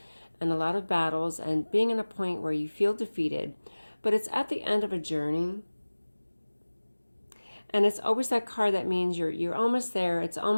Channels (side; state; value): both; inverted; correlation -1.00